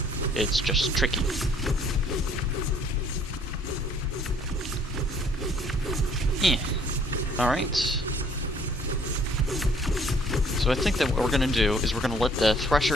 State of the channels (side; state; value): both; normal; correlation 0.60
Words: It's just tricky. Alright. So I think that what we're gonna do is we're gonna let the